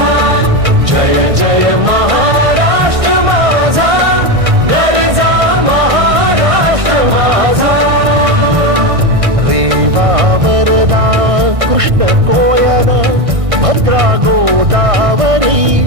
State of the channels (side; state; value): left; late; 1.6 ms